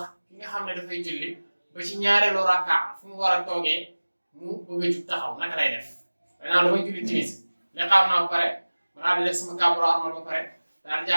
ki nga xam ne dafay julli ba ci ñaareelu rakka fu mu war a toogee mu bëgg a jug taxaw naka lay def danaa damay julli timis li xam naa ba pare ma daal di def sama kàbbaro armal ba pare daal di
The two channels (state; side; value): inverted; both; correlation -1.00